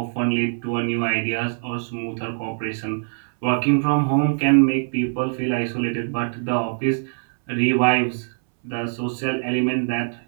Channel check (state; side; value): silent; left; 64 dB below the other